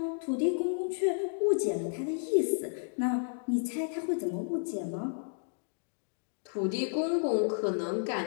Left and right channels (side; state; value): right; silent; digital silence